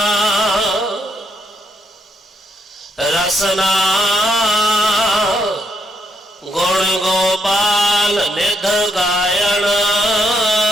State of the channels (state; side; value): normal; both; correlation 0.77